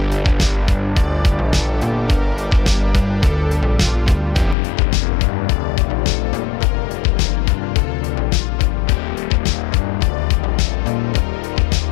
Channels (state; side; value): drops out; right; at 4.5 s